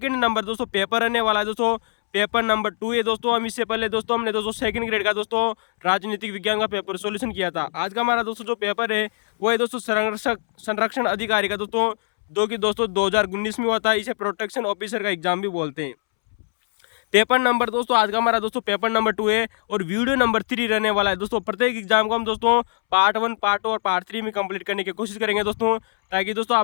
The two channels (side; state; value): right; silent; 64 dB below the other